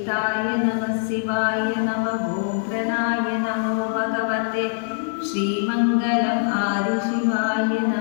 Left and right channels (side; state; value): right; silent; digital silence